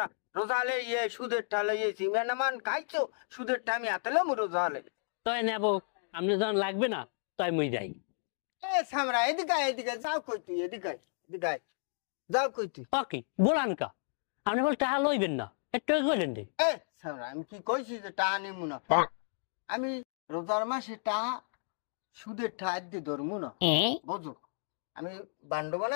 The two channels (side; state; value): right; silent; digital silence